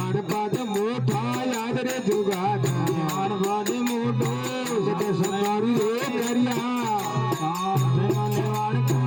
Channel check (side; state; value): both; identical; correlation 1.00